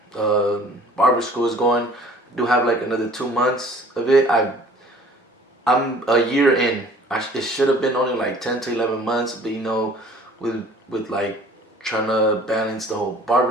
barber school is going. I do have like another 2 months of it. I'm a year in. It should have been only like 10 to 11 months, but with like trying to balance the whole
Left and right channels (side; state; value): both; normal; correlation 0.51